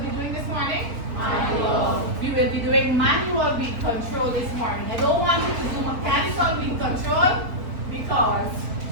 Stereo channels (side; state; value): left; late; 4.3 ms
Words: be doing this morning? Manual. We will be doing manual weed control this morning. I don't want you to do mechanical weed control because